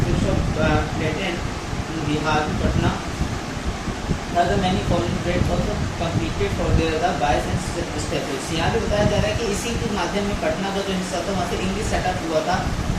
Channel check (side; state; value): both; identical; correlation 1.00